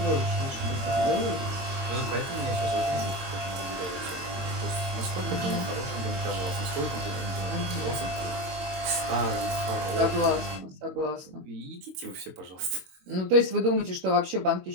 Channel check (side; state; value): left; late; 22 ms